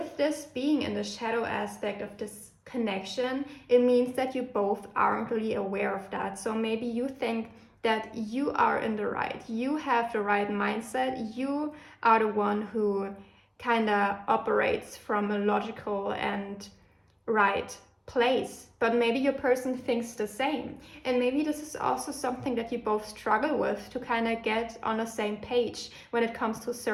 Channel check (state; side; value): identical; both; correlation 1.00